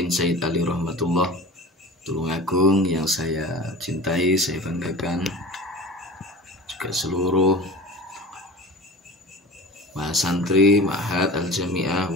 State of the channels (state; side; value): normal; both; correlation 0.37